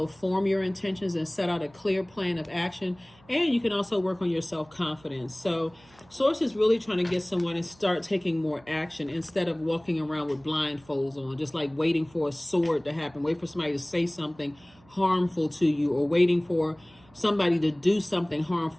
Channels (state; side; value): noise; right; hum, 28 dB below the sound